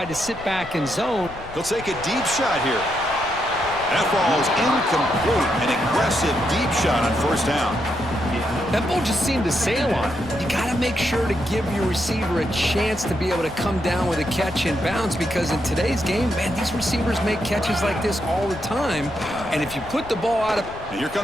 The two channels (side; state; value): left; noise; rumble, 16 dB below the sound